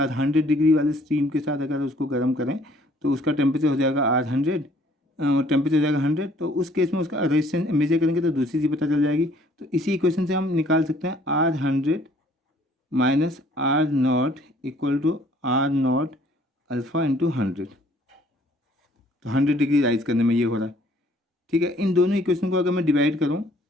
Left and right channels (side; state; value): both; normal; correlation 0.59